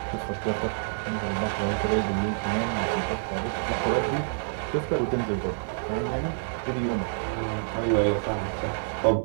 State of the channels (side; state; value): left; silent; digital silence